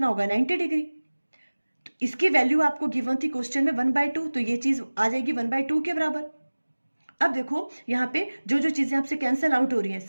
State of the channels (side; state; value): both; inverted; correlation -1.00